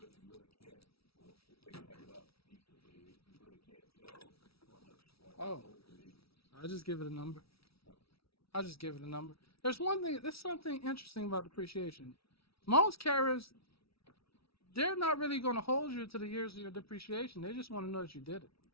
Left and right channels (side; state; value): right; late; 0.76 ms